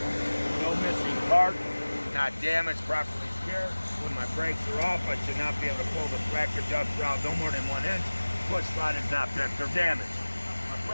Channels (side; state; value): both; inverted; correlation -1.00